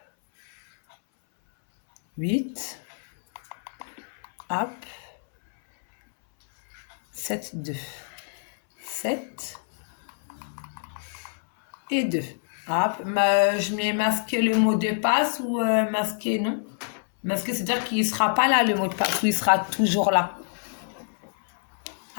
8. Hop. 7, 2. 7. Et 2. Hop. Je mets masquer le mot de passe ou masquer, non? Masquer, c'est-à-dire qu'il ne sera pas là, le mot de passe, ou il sera toujours là.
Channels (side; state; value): right; silent; 61 dB below the other